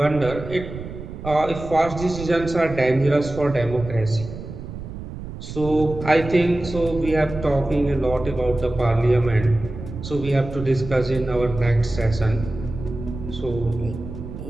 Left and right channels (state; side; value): noise; right; rumble, 10 dB below the sound